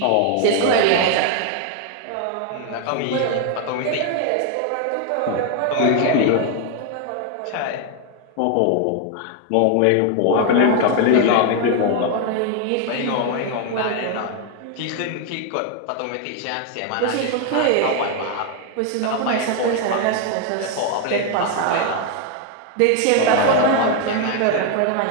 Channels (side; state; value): both; different; correlation 0.01